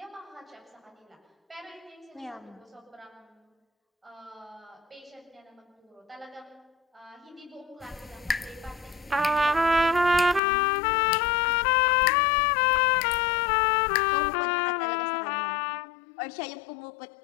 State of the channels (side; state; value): right; drops out; at 10.4 s